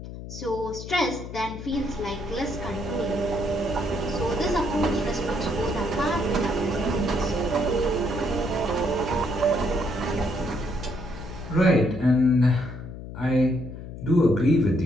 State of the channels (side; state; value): left; noise; hum, 11 dB below the sound